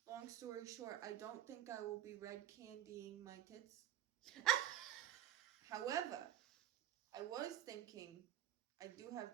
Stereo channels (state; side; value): quieter; left; 12.1 dB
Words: long story short, I don't think I will be red candying my tits. However, I was thinking, I do have